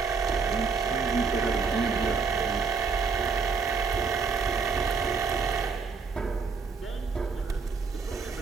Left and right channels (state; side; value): quieter; left; 4.9 dB